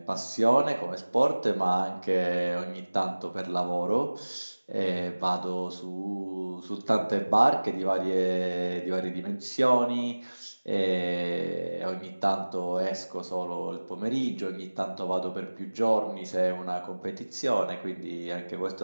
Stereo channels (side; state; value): both; inverted; correlation -1.00